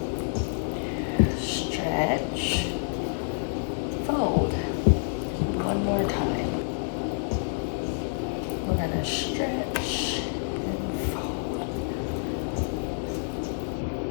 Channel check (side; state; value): right; silent; 59 dB below the other